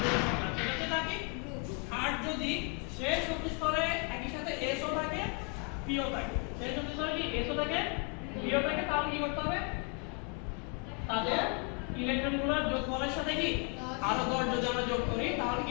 সেটা হচ্ছে তার কি? আর যদি শেষ শক্তি স্তরে একই সাথে S ও থাকে, P ও থাকে, শেষ শক্তি স্তরে কি S ও থাকে, P ও থাকে, তাহলে কি করতে হবে? তাদের ইলেকট্রনগুলোর যোগফলের সাথে কি আরো 10 যদি আমরা যোগ করি তাহলে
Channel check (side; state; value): right; quieter; 35.2 dB